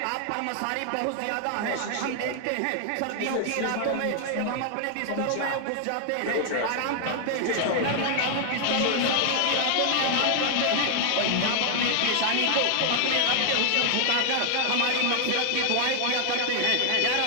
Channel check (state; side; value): different; both; correlation 0.00